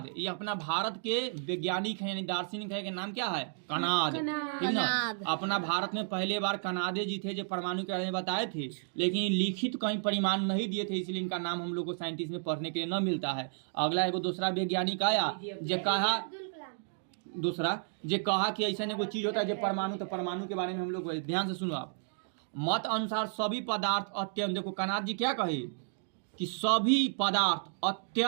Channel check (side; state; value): left; silent; digital silence